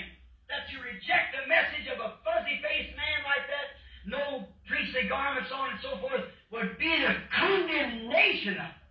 that to reject the message of a fuzzy-faced man like that, no priestly garments on and so forth, would be the condemnation of it?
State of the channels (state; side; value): identical; both; correlation 1.00